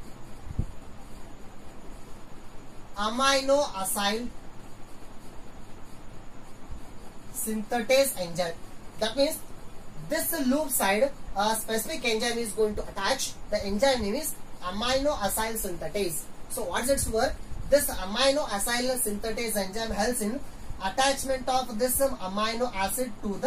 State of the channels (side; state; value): both; identical; correlation 1.00